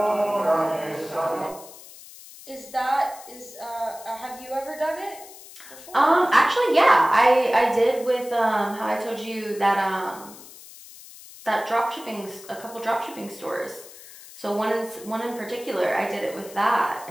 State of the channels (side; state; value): left; noise; hiss, 18 dB below the sound